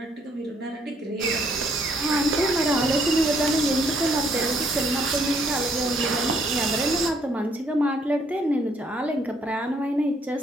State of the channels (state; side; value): normal; both; correlation 0.68